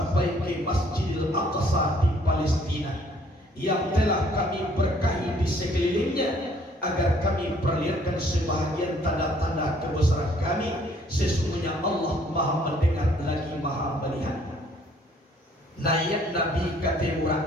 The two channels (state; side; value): normal; both; correlation 0.61